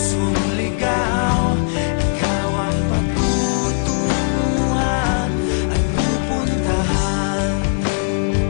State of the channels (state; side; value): silent; right; digital silence